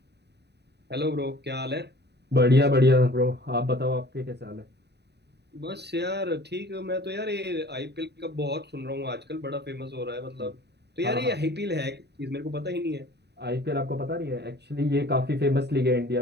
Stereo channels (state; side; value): late; left; 0.49 ms